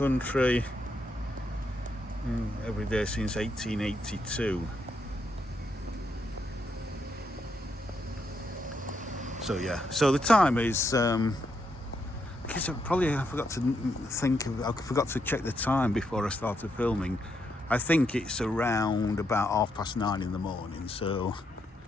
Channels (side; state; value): both; normal; correlation 0.79